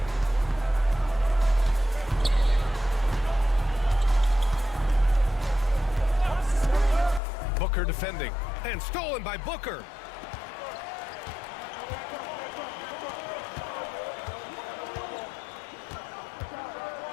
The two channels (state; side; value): drops out; right; at 7.2 s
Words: Booker defending, and stolen by Booker.